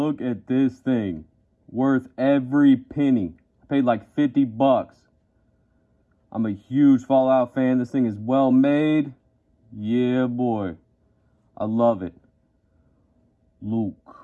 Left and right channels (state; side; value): identical; both; correlation 1.00